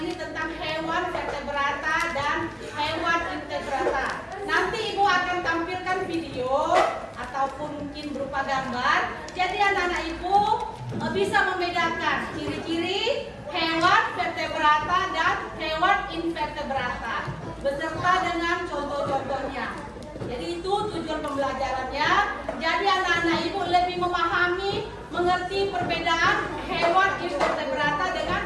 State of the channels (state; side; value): identical; both; correlation 1.00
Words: ini tentang hewan vertebrata dan hewan invertebrata. Nanti Ibu akan tampilkan video ataupun mungkin berupa gambar. Jadi anak-anak Ibu bisa membedakan ciri-ciri hewan vertebrata dan hewan invertebrata beserta dengan contoh-contohnya. Jadi itu tujuan pembelajarannya. Jadi anak-anak Ibu lebih memahami, mengerti perbedaan hewan invertebrata dengan